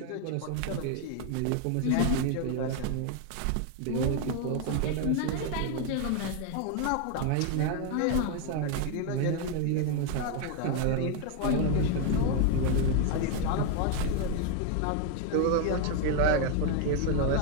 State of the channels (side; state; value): both; different; correlation 0.01